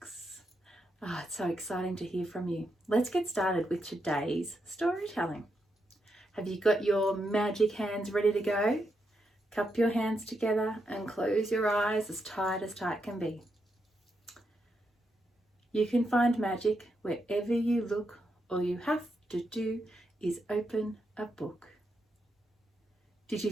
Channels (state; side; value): normal; both; correlation 0.83